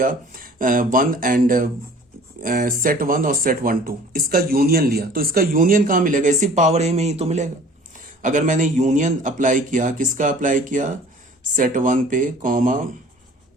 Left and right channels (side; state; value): both; normal; correlation 0.48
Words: 1 एंड सेट 1 और सेट 1 2, इसका यूनियन लिया। तो इसका यूनियन कहां मिलेगा, इसी पावर ए में ही तो मिलेगा। अगर मैंने यूनियन अप्लाई किया, किसका अप्लाई किया, सेट 1 पे कॉमा